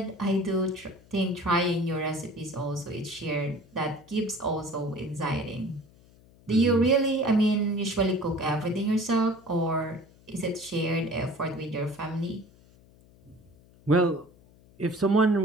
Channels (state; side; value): noise; left; hum, 27 dB below the sound